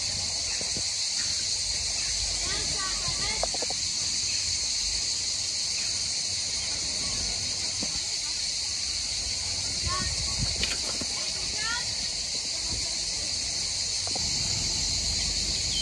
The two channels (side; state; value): both; identical; correlation 1.00